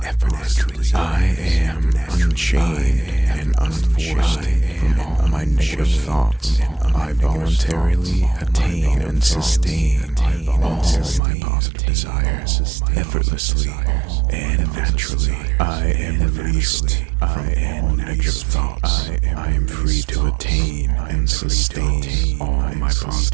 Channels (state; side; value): drops out; left; at 11.2 s